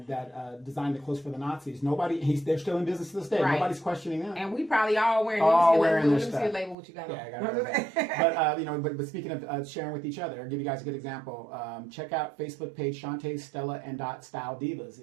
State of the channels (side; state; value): left; drops out; at 6.8 s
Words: designed the clothes for the Nazis. They're still in business to this day. Right. Nobody's questioning them. And we probably all wearing. Their stuff. Let me see a label what you got. Yeah, I got it. But speaking of sharing with each other, I'll give you guys a good example. Check out Facebook page Shantae, Stella, and Style Divas.